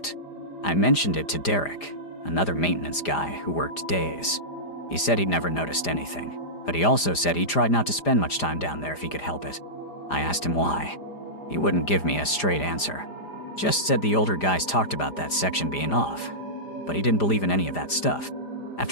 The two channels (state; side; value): late; right; 5.0 ms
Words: I mentioned it to Derek, another maintenance guy who worked days. He said he'd never noticed anything, but he also said he tried not to spend much time down there if he could help it. I asked him why. He wouldn't give me a straight answer. Just said the older guys talked about that section being off, but he didn't believe in any of that stuff.